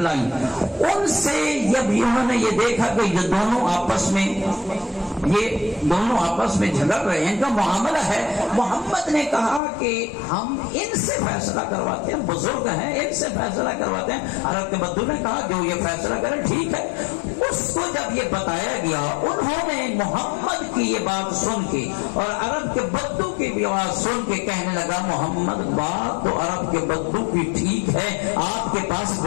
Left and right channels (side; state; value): right; drops out; at 9.6 s